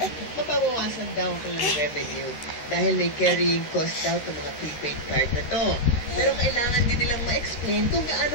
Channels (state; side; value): late; right; 13 ms